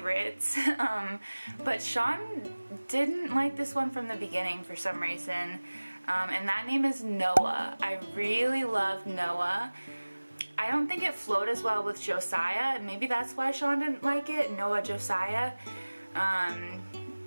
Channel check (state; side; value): inverted; both; correlation -1.00